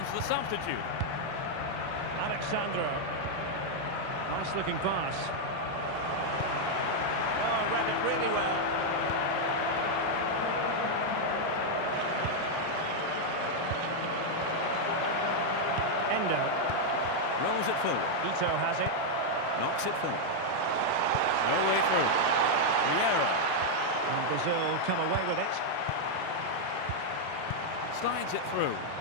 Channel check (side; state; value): both; different; correlation -0.01